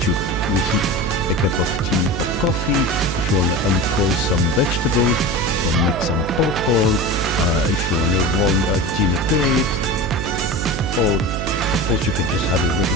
to reheat a cup of tea or coffee, if you want to unfroze some vegetables, or make some popcorn, if you want to warm a dinner plate, or of course you can just have a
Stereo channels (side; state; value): right; noise; hum, 4 dB below the sound